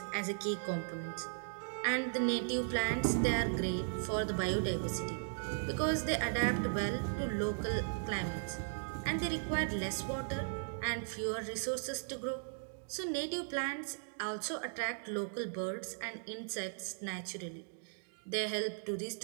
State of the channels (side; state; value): left; silent; digital silence